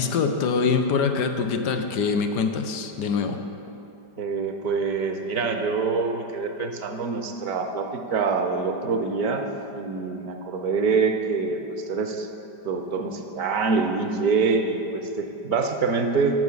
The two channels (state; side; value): late; right; 5.1 ms